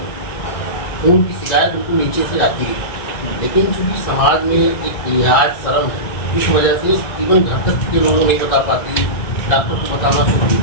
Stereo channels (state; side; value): late; right; 2.3 ms